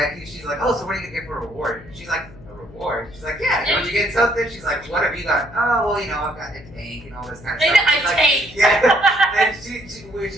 she's like, "Oh, so what are you gonna get for a reward?" She's like, "A reward?" She's like, "Yeah, don't you get something?" She's like, "What have you got?" "Oh, well, you know, I've got the tank and all this kind of stuff." She's like, tank. Yeah. And she's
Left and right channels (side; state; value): left; noise; hum, 20 dB below the sound